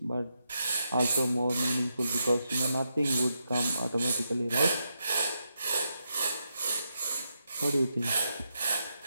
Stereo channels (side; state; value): both; inverted; correlation -0.83